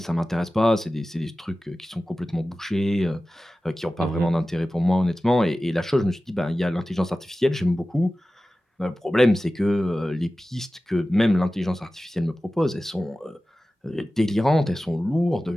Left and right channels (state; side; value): normal; both; correlation 0.96